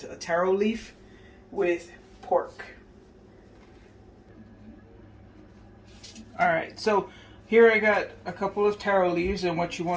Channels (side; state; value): both; identical; correlation 1.00